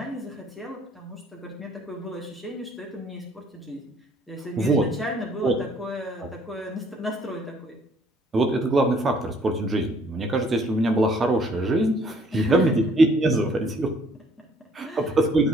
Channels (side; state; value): both; normal; correlation 0.62